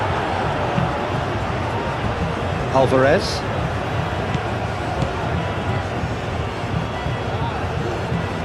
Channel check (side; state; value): both; identical; correlation 1.00